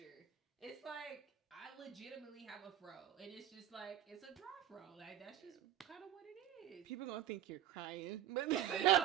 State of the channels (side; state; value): left; quieter; 11.4 dB